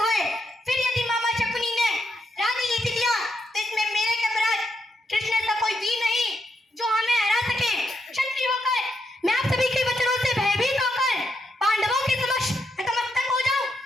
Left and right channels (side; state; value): both; normal; correlation 0.80